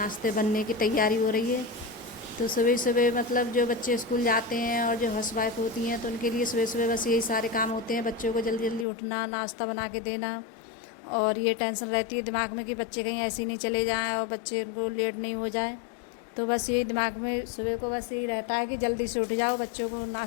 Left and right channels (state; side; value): drops out; right; at 8.8 s